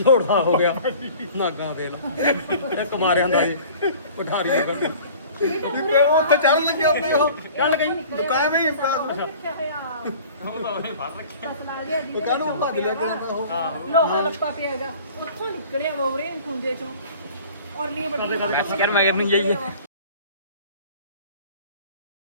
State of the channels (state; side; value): inverted; both; correlation -0.46